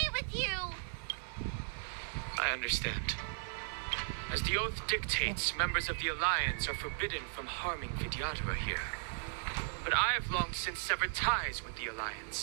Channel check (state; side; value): silent; left; digital silence